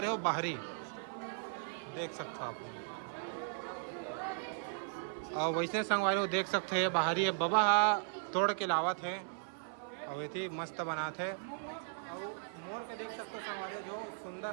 हो बाहरी देख सकते हो आप। और वैसे संगवारी हो देख सकते हैं बाहरी है बाबा तोड़ के लावत है, और ये मस्त बनाते। और मोर के देख सकते हो संगवारी हो जो सुंदर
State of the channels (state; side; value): silent; left; 53 dB below the other